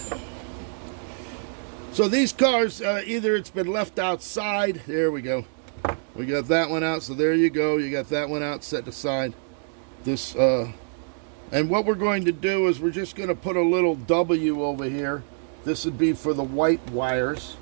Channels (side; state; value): left; silent; digital silence